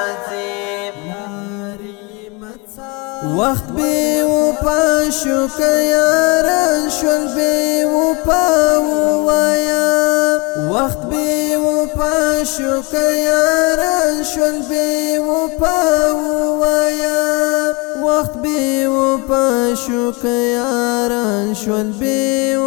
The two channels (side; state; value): right; quieter; 28.7 dB